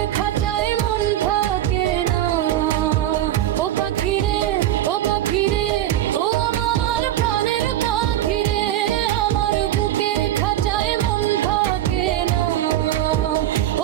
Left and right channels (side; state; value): left; quieter; 12.7 dB